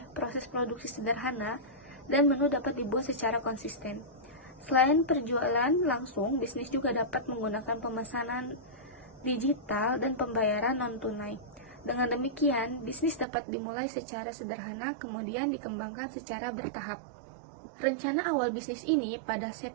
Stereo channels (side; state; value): left; drops out; at 13.2 s